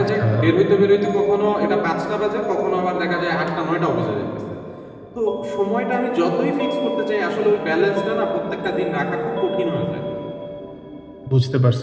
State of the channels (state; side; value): identical; both; correlation 1.00